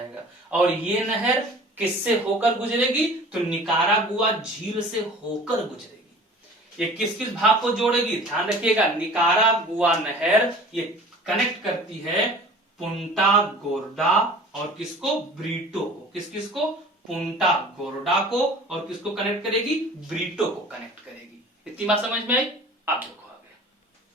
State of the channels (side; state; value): both; normal; correlation 0.44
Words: और ये नहर किससे होकर गुजरेगी, तो निकारागुआ झील से होकर गुजरेगी। ये किस किस भाग को जोड़ेगी, ध्यान रखिएगा, निकारागुआ नहर ये कनेक्ट करती है पुंटा गोर्डा और किसको, ब्रीटो को। किस किस को, पुंटा गोर्डा को, और किसको कनेक्ट करेगी, ब्रीटो को कनेक्ट करेगी। इतनी बात समझ में आई। आप देखो आगे,